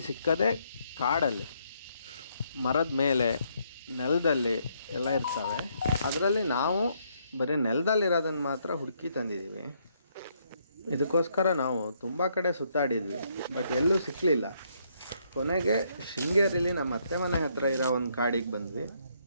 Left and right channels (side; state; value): both; inverted; correlation -0.72